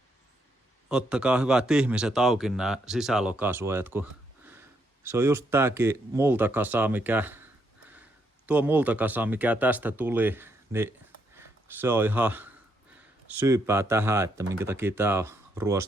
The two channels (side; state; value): both; normal; correlation 0.76